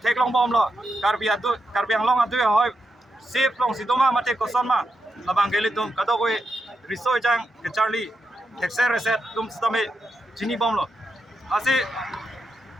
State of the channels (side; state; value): both; normal; correlation 0.85